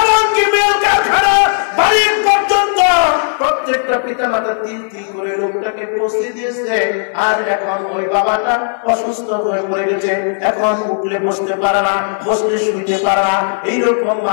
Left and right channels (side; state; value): right; silent; 70 dB below the other